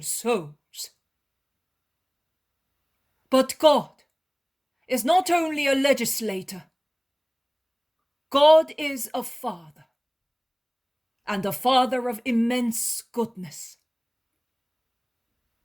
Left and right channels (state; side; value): identical; both; correlation 1.00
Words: souls. But God is not only a legislator. God is a father, and a father of immense goodness.